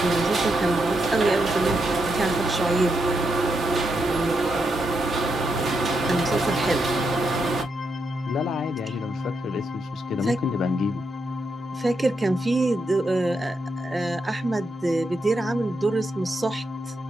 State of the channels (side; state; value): both; normal; correlation 0.82